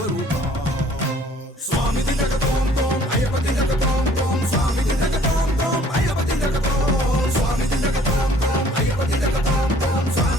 స్వామి దిగతోం తోం అయ్యపతి జగతోం తోం, స్వామి దిగతోం తోం అయ్యపతి జగతోం, స్వామి దిగతోం తోం అయ్యపతి జగతోం తోం,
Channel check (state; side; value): normal; both; correlation 0.57